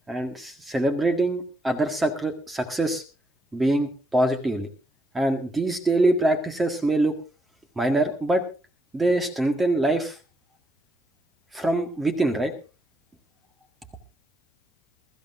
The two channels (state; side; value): normal; both; correlation 0.79